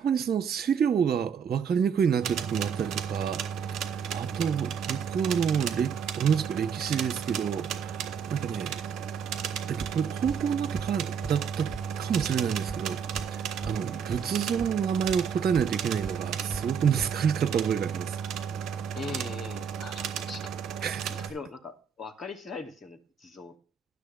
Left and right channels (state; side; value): quieter; left; 7.0 dB